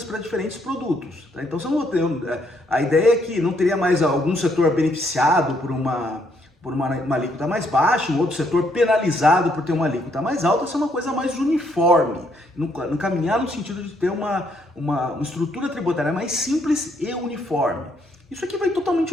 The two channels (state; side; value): normal; both; correlation 0.72